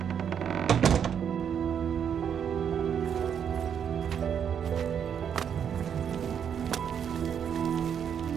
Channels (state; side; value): quieter; left; 8.1 dB